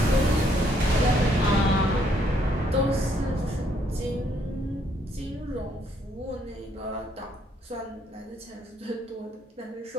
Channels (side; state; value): both; normal; correlation 0.70